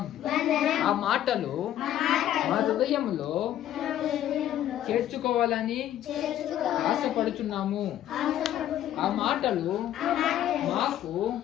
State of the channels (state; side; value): quieter; right; 11.9 dB